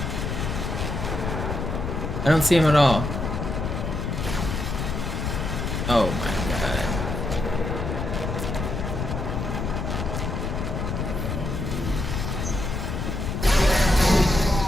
I don't see him at all. Oh my god.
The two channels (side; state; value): left; noise; rumble, 3 dB below the sound